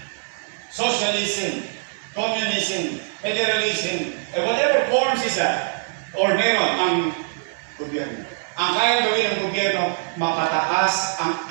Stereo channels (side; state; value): left; silent; 63 dB below the other